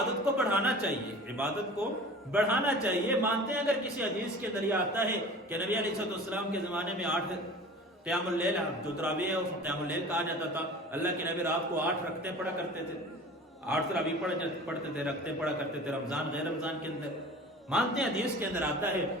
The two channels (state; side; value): normal; both; correlation 0.40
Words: کو بڑھانا چاہیے، عبادت کو بڑھانا چاہیے۔ مانتے ہیں اگر کسی حدیث کے ذریعے آتا ہے کہ نبی علیہ السلام کے زمانے میں 8 قیام اللیل، جو تراویح ہے اس کو قیام اللیل کہا جاتا تھا، اللہ کے نبی رات کو 8 رکعتیں پڑھا کرتے تھے، 8 تراویح پڑھتے تھے، رکعتیں پڑھا کرتے تھے رمضان غیر رمضان کے اندر۔ مانتے ہیں حدیث کے اندر آتا ہے،